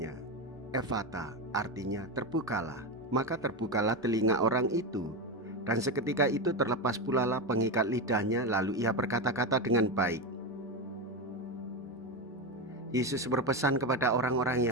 Ephata, artinya terbukalah. Maka terbukalah telinga orang itu. Dan seketika itu terlepas pula lah pengikat lidahnya, lalu ia berkata-kata dengan baik. Yesus berpesan kepada orang-orang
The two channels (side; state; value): both; normal; correlation 0.15